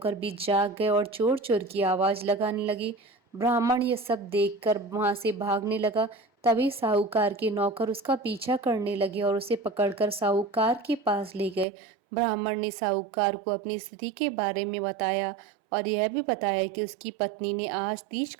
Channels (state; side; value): drops out; left; at 11.7 s